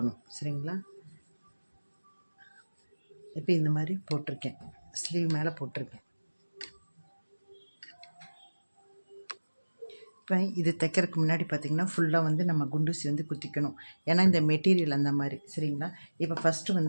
சரிங்களா? இப்போ இந்த மாதிரி போட்டிருக்கேன், ஸ்லீவ் மேலே போட்டிருக்கேன். இப்போ இது தைக்கிறதுக்கு முன்னாடி பார்த்திங்கன்னா ஃபுல்லாக வந்து நம்ம குண்டூசி வந்து குத்திக்கணும். ஏன்னா இந்த மெட்டீரியல் அந்த மாதிரி, சரிங்களா? இப்போ ஃபஸ்ட்டு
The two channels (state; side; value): inverted; both; correlation -1.00